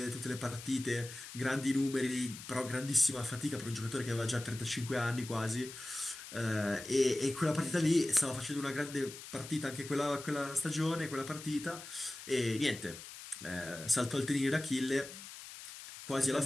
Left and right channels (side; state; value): left; noise; hiss, 13 dB below the sound